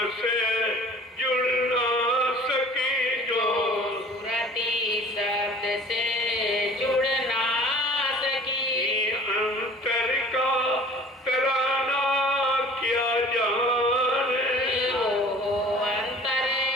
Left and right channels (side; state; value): both; normal; correlation 0.47